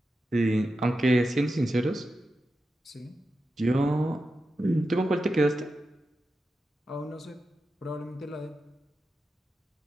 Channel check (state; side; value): normal; both; correlation 0.90